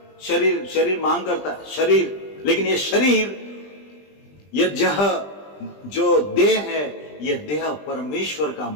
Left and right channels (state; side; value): late; right; 20 ms